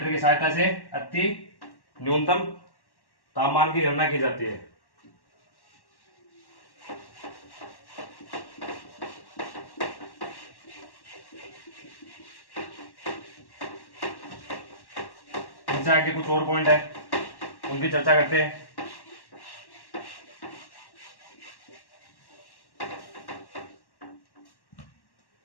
की सहायता से अति न्यूनतम तापमान की गणना की जाती है। इनसे आगे कुछ और पॉइंट है, उनकी चर्चा करते हैं।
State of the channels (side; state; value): right; late; 1.1 ms